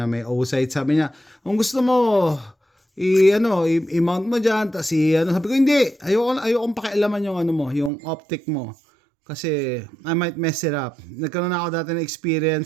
may O-sight. Sabi niya, kung gusto mo, i-mount mo dyan, sabi ko, hindi, ayokong pakialaman yung yung optic mo, kasi I might mess it up. Nagkaroon na ako dati ng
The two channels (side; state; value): left; drops out; at 7.9 s